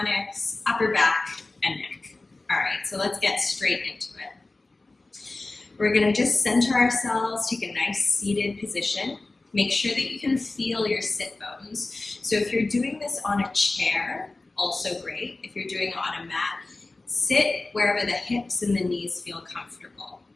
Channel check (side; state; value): right; quieter; 3.2 dB